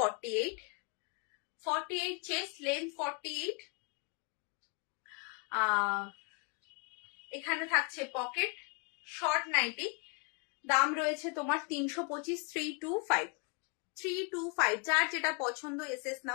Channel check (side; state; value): right; quieter; 34.7 dB